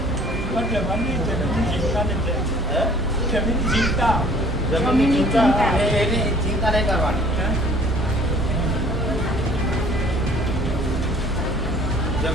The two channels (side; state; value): both; normal; correlation 0.53